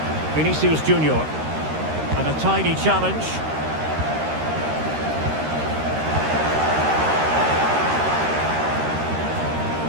Vinicius Junior. And a tidy challenge.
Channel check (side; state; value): left; late; 13 ms